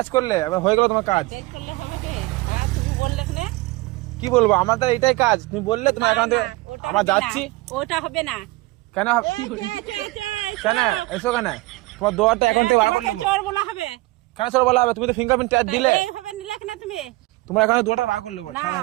করলে, এবার হয়ে গেল তোমার কাজ। চেক করলে হবে কি? আর তুমি বললে কিনা? কি বলবো, আমার তো এটাই কাজ। তুমি বললে তোমার অ্যাকাউন্ট থেকে আমরা যাচ্ছি। ওটা হবে না। কেন কেন এসো কেন? তোমার দুয়ারটা অ্যাকাউন্ট থেকে বার করে নেবো। চোর বলা হবে কেন চোর বলা হবে? তুমি তো ফিঙ্গারপ্রিন্ট চার্জ দিলে। এইভাবে নিলে কিনা তুমি? তোমার অ্যাকাউন্ট দুয়ারটা বার করে নেবো। না, ছাড়ো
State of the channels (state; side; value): quieter; left; 21.5 dB